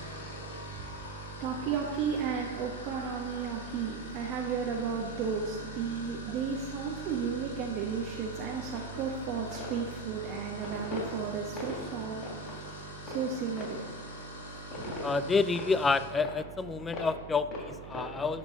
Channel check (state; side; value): noise; right; hum, 13 dB below the sound